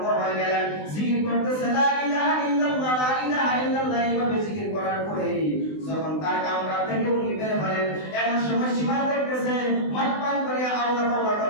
হয়ে গেলেন, জিকির করতেছে লা ইলাহা ইল্লাল্লাহ লা ইলাহা ইল্লাল্লাহ এইভাবে জিকির করার পরে যখন তার কামরা থেকে উনি বের হলেন এমন সময় সীমা দেখতেছে মদ পান করে আল্লাহ আল্লাহ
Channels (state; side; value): late; right; 20 ms